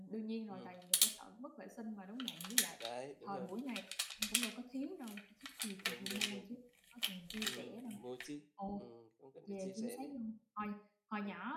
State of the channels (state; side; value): identical; both; correlation 1.00